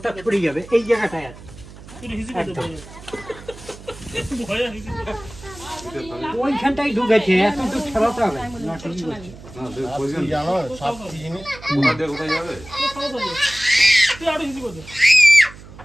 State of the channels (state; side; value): noise; right; hum, 18 dB below the sound